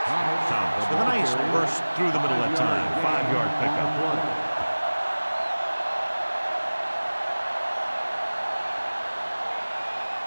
Thomas with a nice burst through the middle that time. 5-yard pickup.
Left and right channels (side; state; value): both; inverted; correlation -1.00